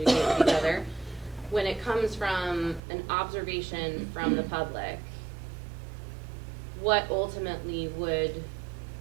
with each other. When it comes from an observation from the public, what ultimately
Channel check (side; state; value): left; drops out; at 2.8 s